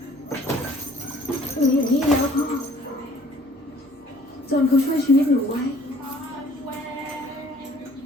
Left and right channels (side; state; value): both; normal; correlation 0.56